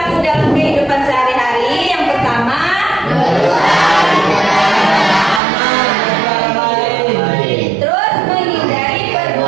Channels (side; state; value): left; drops out; at 5.4 s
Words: dalam kehidupan sehari-hari yang pertama, terus menghindari